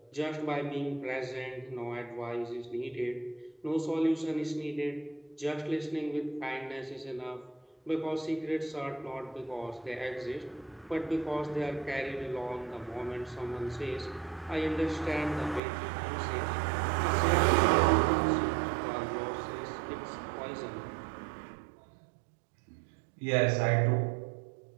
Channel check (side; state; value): left; drops out; at 15.6 s